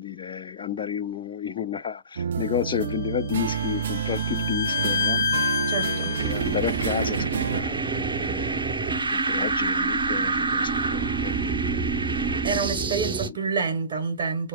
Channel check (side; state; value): both; inverted; correlation -0.36